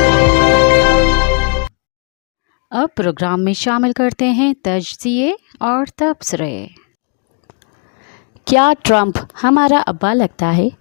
अब प्रोग्राम में शामिल करते हैं तजज़िये और तबसरे। क्या ट्रंप हमारा अब्बा लगता है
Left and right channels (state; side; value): quieter; right; 38.1 dB